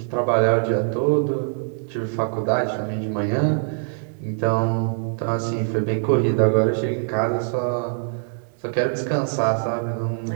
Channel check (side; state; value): left; silent; 63 dB below the other